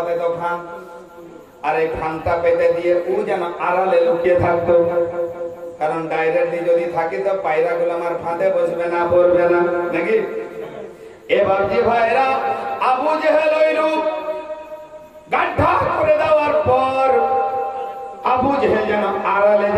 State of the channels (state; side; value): identical; both; correlation 1.00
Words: তো ফান, আর এই ফানটা পেতে দিয়ে ও যেন আড়ালে লুকিয়ে থাকতো, কারণ ডাইরেক্টলি যদি থাকি তো পায়রা গুলো আমার ফাঁদে বসবে না, পড়বে না নাকি। এবার যে ভাইরা আবু জেহেল ওই রূপ গাঢ় করে দেওয়ার পর আবু জেহেল যেন আড়ালে